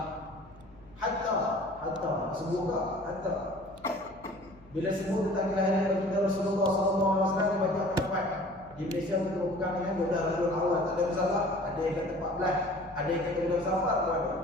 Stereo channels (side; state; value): left; noise; hum, 25 dB below the sound